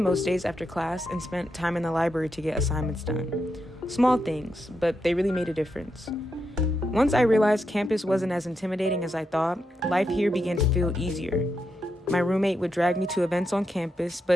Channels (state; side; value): normal; both; correlation 0.84